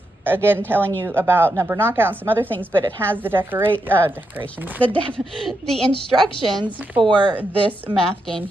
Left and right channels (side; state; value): both; normal; correlation 0.84